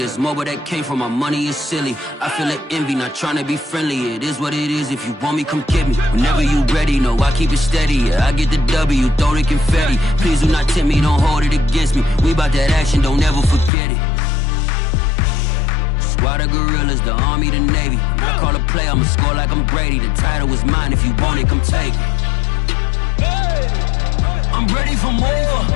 mobile that came from my money is silly. I feel it envy, not trying to be friendly. It is what it is, if you want me, come get me. Whenever you ready, no, I keep it steady. Yeah, I get the W, throw the confetti. Please do not tempt me, don't hold it against me. We about that action, don't ever forget it. Squad of gorillas, the army, the navy. When I call a play, I'ma score like I'm Brady. The title is mine, if you want it, come take it. I'm ready for more.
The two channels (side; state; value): right; drops out; at 13.7 s